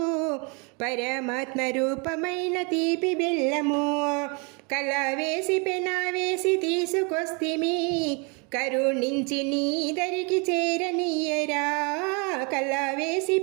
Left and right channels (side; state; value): left; quieter; 32.8 dB